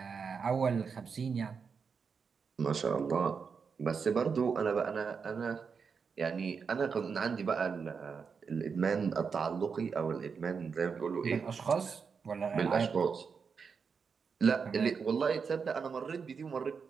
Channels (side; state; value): left; quieter; 5.8 dB